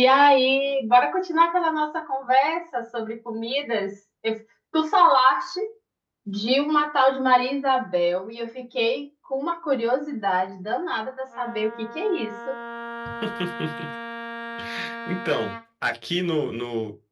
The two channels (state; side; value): identical; both; correlation 1.00